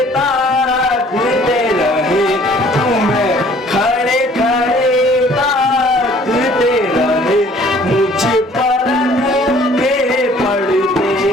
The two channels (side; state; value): both; normal; correlation 0.56